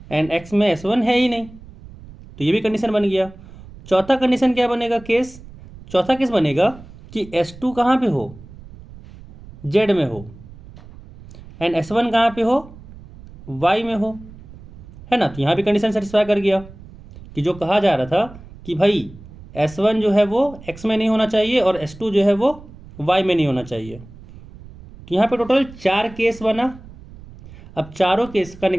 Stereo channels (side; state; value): right; noise; rumble, 19 dB below the sound